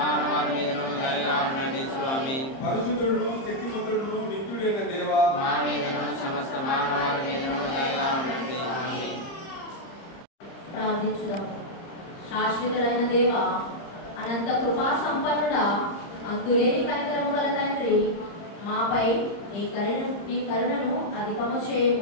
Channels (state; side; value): late; right; 30 ms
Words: మీదను దయగా ఉండండి స్వామి. పరిశుద్ధుడును శక్తిమంతుడును నిత్యుడైన దేవా మా మీదను సమస్త మానవాళి మీదను దయగా ఉండండి స్వామి. ప్రార్థించుదాము. శాశ్వతుడైన దేవ, అనంత కృపా సంపన్నుడా, అంతులేని కనికరము గల తండ్రి, మాపై నీ కరుణను అధికము